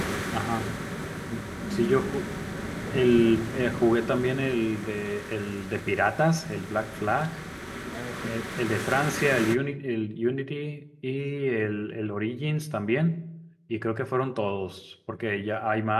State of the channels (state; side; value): identical; both; correlation 1.00